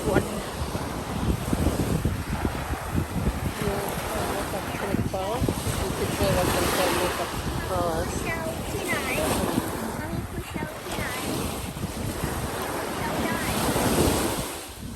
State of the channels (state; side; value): identical; both; correlation 1.00